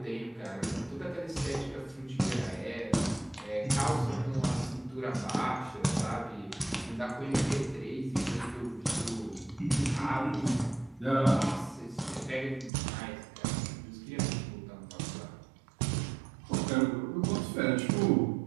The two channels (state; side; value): drops out; left; at 12.7 s